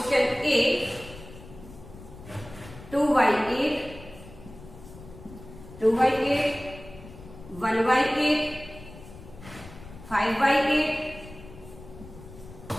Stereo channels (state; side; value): noise; left; rumble, 17 dB below the sound